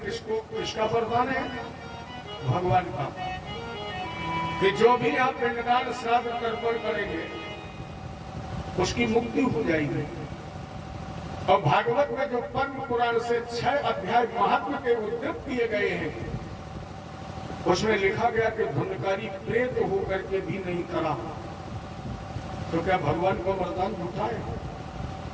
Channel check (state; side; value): identical; both; correlation 1.00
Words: वरदान है? भगवान का, कि जो भी आप पिंडदान श्राद्ध तर्पण करेंगे उसकी मुक्ति हो जाएगी। और भागवत में जो पद्म पुराण से 6 अध्याय महात्मा के उद्धृत किए गए हैं, उसमें लिखा गया कि धुंधकारी प्रेत होकर के भी नहीं करा, तो क्या भगवान का वरदान झूठा है?